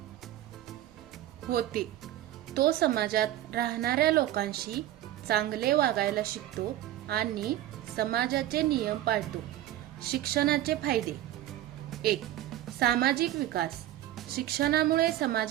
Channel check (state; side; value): quieter; left; 13.5 dB